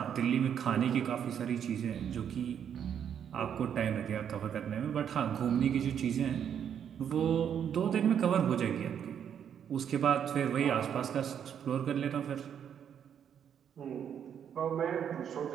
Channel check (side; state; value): left; quieter; 8.6 dB